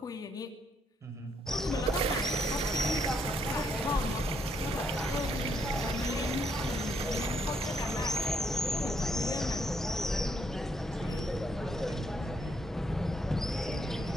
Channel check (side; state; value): both; normal; correlation 0.74